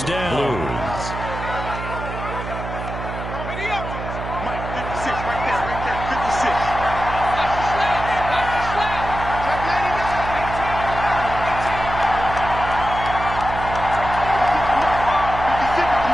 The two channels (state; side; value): noise; right; hum, 7 dB below the sound